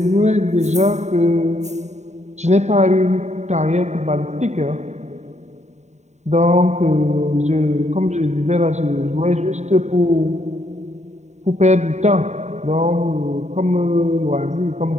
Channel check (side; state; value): left; late; 0.33 ms